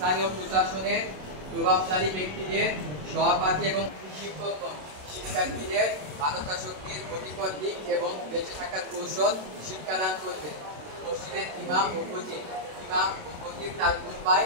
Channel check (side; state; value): left; late; 27 ms